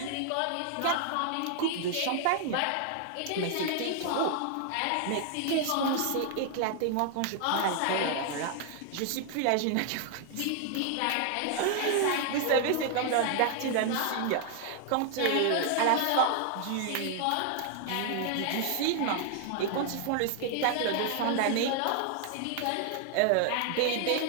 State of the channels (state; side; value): different; both; correlation 0.00